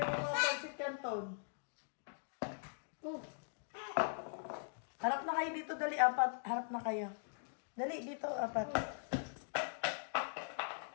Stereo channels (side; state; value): right; silent; digital silence